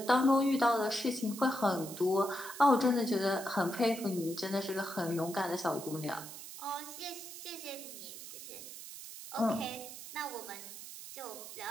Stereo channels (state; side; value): noise; right; hiss, 12 dB below the sound